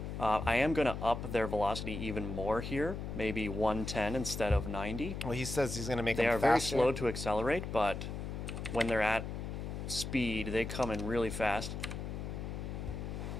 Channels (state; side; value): noise; left; hum, 5 dB below the sound